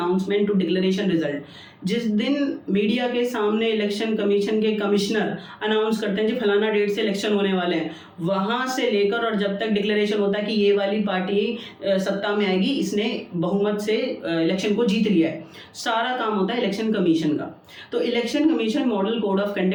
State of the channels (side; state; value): both; identical; correlation 1.00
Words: to declaration result. जिस दिन मीडिया के सामने इलेक्शन कमीशन के कमिश्नर अनाउंस करते हैं कि फलाना डेट से इलेक्शन होने वाले हैं, वहां से लेकर और जब तक डिक्लेरेशन होता है कि ये वाली पार्टी सत्ता में आएगी, इसने बहुमत से इलेक्शन को जीत लिया है, सारा काम होता है इलेक्शन कमीशन का. तो election commission model code of